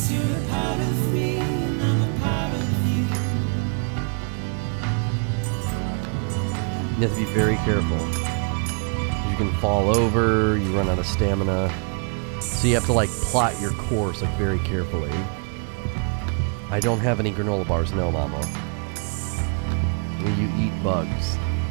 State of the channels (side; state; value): left; quieter; 40.0 dB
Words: you're a part of me, and I'm a part of you. You have to be very careful. You can fall over, you run out of stamina. So you have to like plot your course like very carefully. I don't have any granola bars, no, mama. You eat bugs.